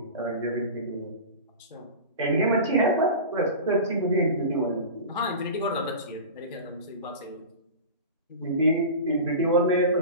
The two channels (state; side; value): inverted; both; correlation -0.31